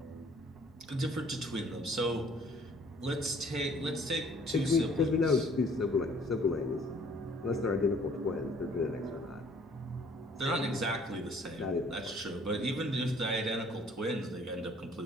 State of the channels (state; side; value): normal; both; correlation 0.58